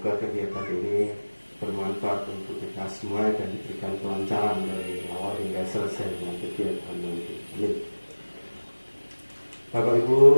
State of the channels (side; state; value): both; inverted; correlation -1.00